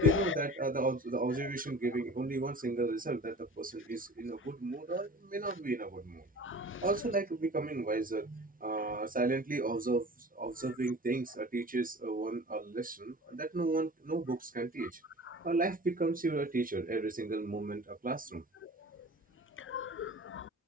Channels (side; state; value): both; normal; correlation 0.41